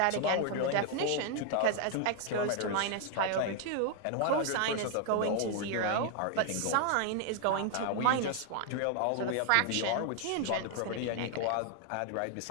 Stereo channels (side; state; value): both; different; correlation 0.00